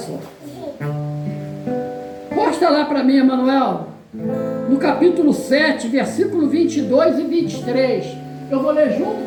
Posta lá para mim, Emanuel, no capítulo 7, versículo 22 e 23. Eu vou ler junto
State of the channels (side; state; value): both; identical; correlation 1.00